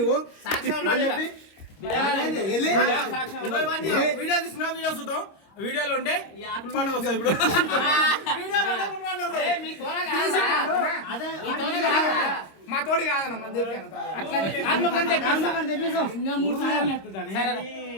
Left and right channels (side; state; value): right; late; 25 ms